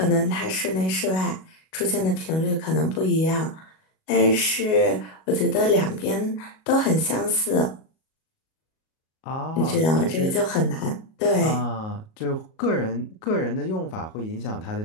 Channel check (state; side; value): late; right; 37 ms